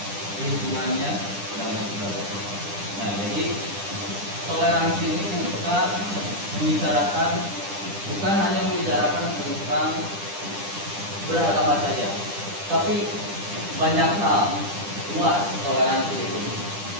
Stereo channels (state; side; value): late; left; 10 ms